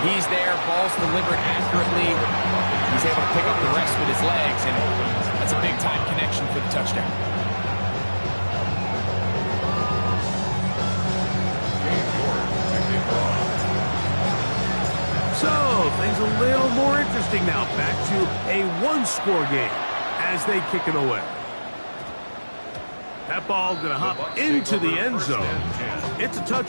He's there, ball's delivered accurately. He's able to pick up the rest with his legs, and that's a big-time connection for the touchdown. So, things a little more interesting now. Back to a 1-score game as they kick it away. That ball going to hop into the end zone. It's a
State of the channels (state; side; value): inverted; both; correlation -1.00